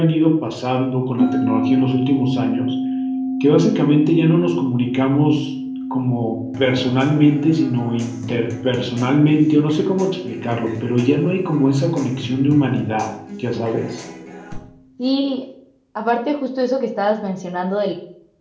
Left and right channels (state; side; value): identical; both; correlation 1.00